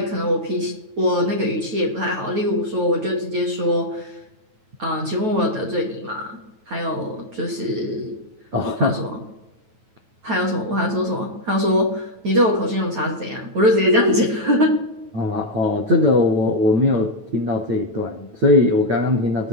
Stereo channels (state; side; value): late; left; 9.2 ms